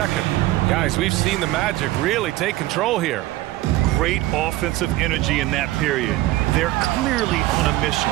Guys, we've seen the Magic really take control here. Great offensive energy in that period. They're clearly on a mission.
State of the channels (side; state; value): left; quieter; 16.9 dB